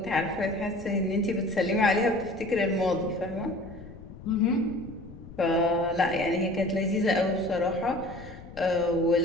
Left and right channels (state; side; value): noise; left; rumble, 16 dB below the sound